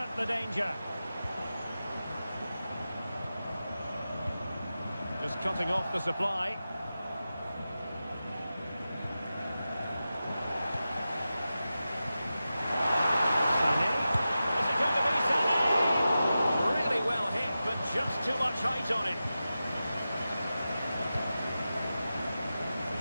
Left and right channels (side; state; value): both; inverted; correlation -0.93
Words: the danger. Just cutting off the supply. Sané. Is it going to be Sané? Really well hit, but just too much height on it.